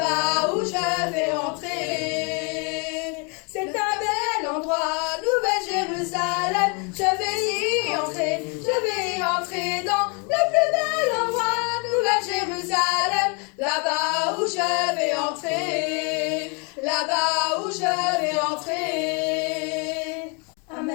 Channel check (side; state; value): right; quieter; 34.0 dB